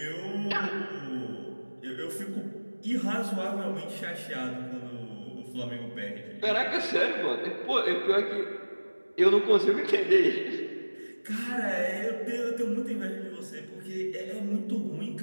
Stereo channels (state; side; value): inverted; both; correlation -1.00